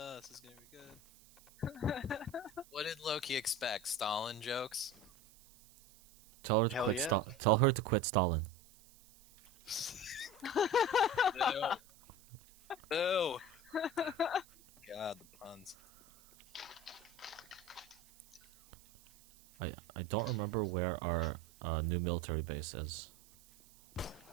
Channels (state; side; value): noise; right; hiss, 25 dB below the sound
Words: is gonna be good. What did Loki expect? Stalin jokes? Tell her to Hell quit. yeah. Tell her to quit Stalin. No. No. God, the puns. I don't remember where our new military base is.